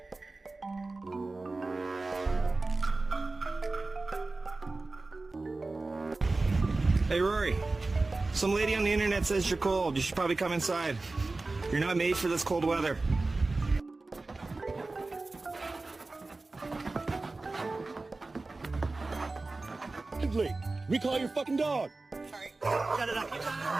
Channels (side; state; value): left; quieter; 3.4 dB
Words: Hey, Rory. Some lady on the internet says you're cold. You should probably come inside. You're not made for this cold weather. Blake, recall your fucking dog. Sorry. Shut it up.